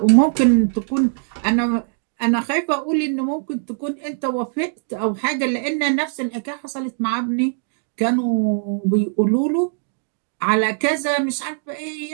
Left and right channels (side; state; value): left; silent; digital silence